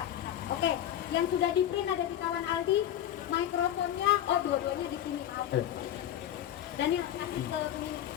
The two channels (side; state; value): right; quieter; 11.4 dB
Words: Oke, yang sudah di print ada di kawan Aldi. Mikrofonnya, dua-duanya di sini. Dan yang kasih ke ini.